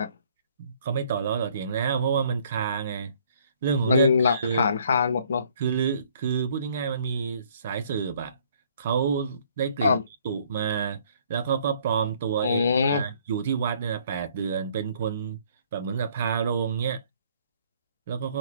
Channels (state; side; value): inverted; both; correlation -0.61